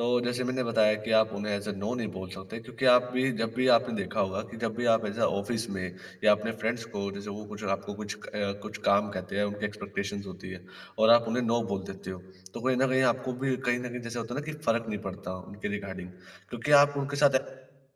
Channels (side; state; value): both; identical; correlation 1.00